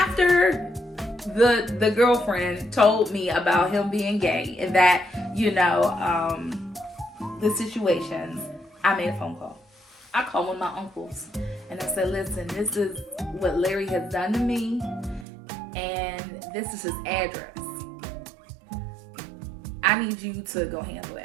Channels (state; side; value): drops out; left; at 15.2 s